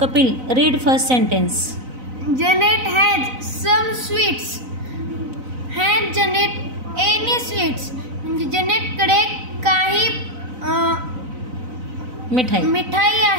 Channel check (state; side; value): late; left; 4.0 ms